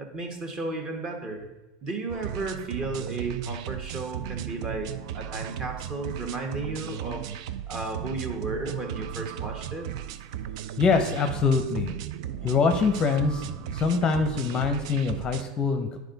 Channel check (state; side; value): normal; both; correlation 0.38